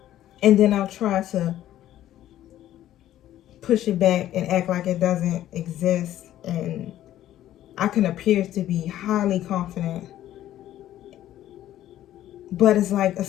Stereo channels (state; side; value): quieter; right; 12.9 dB